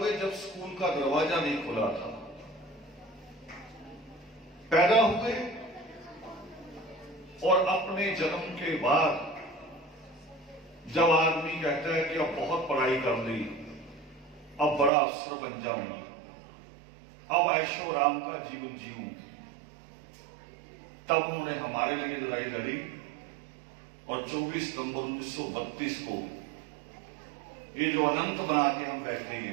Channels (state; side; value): drops out; left; at 14.9 s